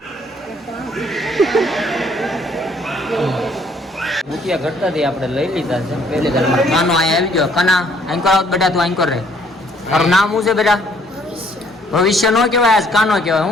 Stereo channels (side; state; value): both; normal; correlation 0.63